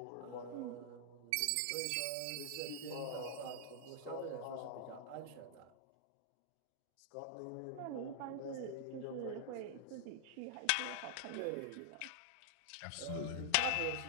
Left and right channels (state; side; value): different; both; correlation -0.01